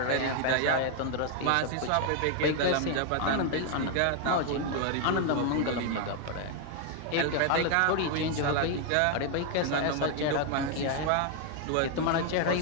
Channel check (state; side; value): different; both; correlation 0.00